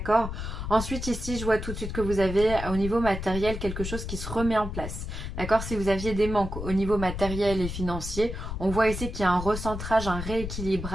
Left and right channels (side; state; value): left; noise; rumble, 6 dB below the sound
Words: Ensuite ici je vois tout de suite que vous avez au niveau matériel quelque chose qui se remet en place, d'accord. Si vous aviez des manques au niveau matériel et financier, on voit ici qu'il y a un recentrage, un